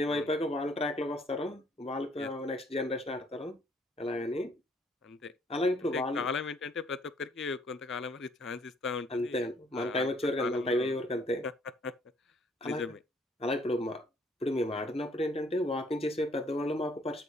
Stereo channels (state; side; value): normal; both; correlation 0.64